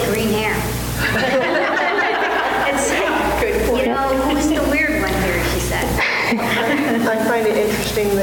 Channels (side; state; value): both; identical; correlation 1.00